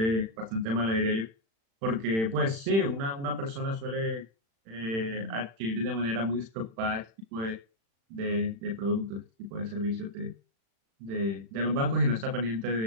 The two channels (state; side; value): late; left; 36 ms